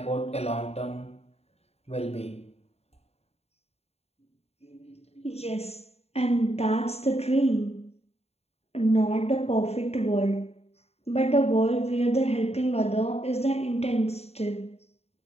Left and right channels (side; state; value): right; late; 0.30 ms